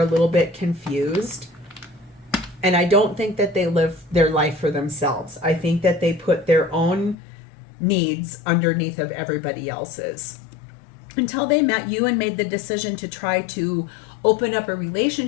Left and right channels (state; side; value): drops out; right; at 7.2 s